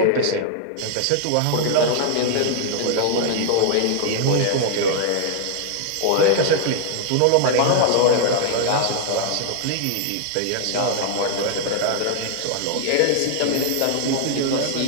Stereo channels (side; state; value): both; different; correlation -0.01